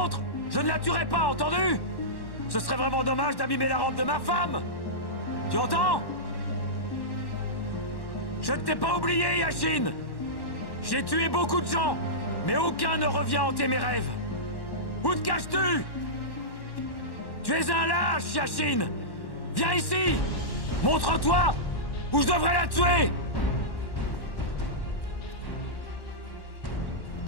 je ne la tuerai pas, entendu? Ce serait vraiment dommage d'abîmer la robe de ma femme! Tu entends? Je ne t'ai pas oublié, Yashin! J'ai tué beaucoup de gens, mais aucun ne revient hanter mes rêves! Où te caches-tu? Tu es un lâche, Yashin! Viens ici! Montre-toi! Ou je devrais la tuer!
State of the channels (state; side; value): late; right; 1.1 ms